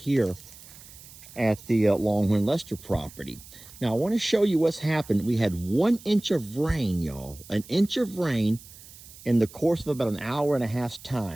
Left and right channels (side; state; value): right; noise; hiss, 19 dB below the sound